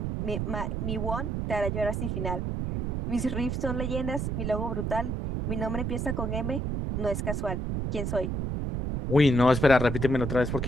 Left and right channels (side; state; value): right; noise; rumble, 2 dB below the sound